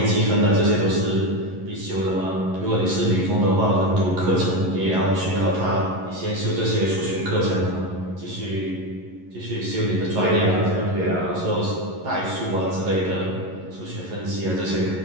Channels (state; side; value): late; left; 11 ms